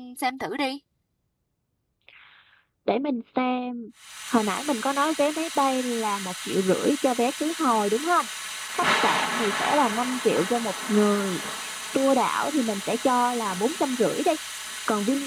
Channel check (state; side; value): identical; both; correlation 1.00